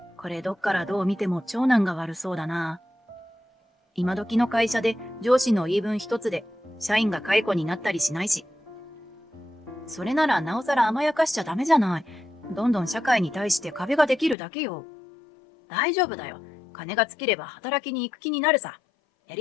これどっからどう見ても長男が悪そうだな。今時の会社で上司の言い分一つで社員が解雇になったりしないし。それならなおさら甘やかしちゃダメじゃない。どんどん社会に対して壁ができるだけよ。大丈夫だよ。金が尽きれば働きに行く気になるさ。や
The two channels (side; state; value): right; drops out; at 14.4 s